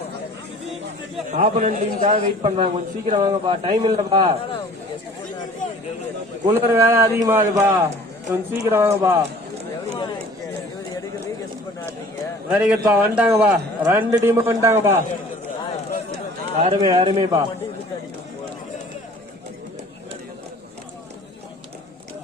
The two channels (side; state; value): both; normal; correlation 0.49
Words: ஆப்பனன் டீமுக்காக வெயிட் பண்றாங்க. கொஞ்சம் சீக்கிரம் வாங்கப்பா, டைம் இல்லப்பா. குளிர் வேலை அதிகமாகுதுப்பா, கொஞ்சம் சீக்கிரம் வாங்கப்பா. வெரி குட்பா, வந்துட்டாங்கப்பா. 2 டீம் வந்துட்டாங்கப்பா. அருமை அருமைப்பா.